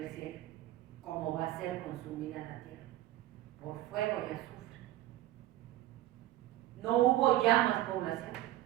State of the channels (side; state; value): left; quieter; 15.1 dB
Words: cielo, como va a ser consumida la tierra, por fuego y azufre. No hubo ya más población,